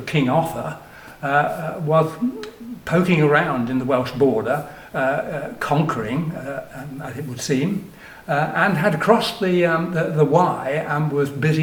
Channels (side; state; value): both; identical; correlation 1.00